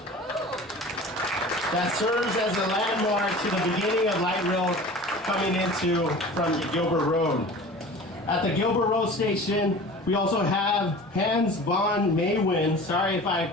that serves as a landmark to the beginning of light rail coming from Gilbert Road. At the Gilbert Road station, we also have Hans von Maywin. Sorry if I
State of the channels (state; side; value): normal; both; correlation 0.39